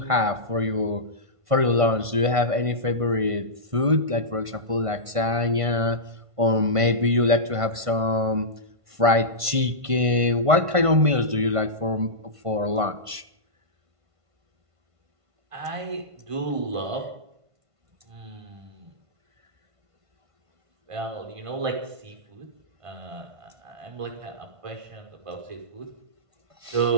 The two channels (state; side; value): late; left; 1.5 ms